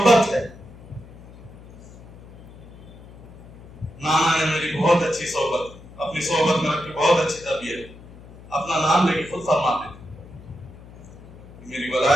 ہے. نانا نے میری بہت اچھی صحبت، اپنی صحبت میں رکھ کے بہت اچھی تربیت، اپنا نام لے کے خود فرماتے تھے میری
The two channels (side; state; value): left; noise; hum, 19 dB below the sound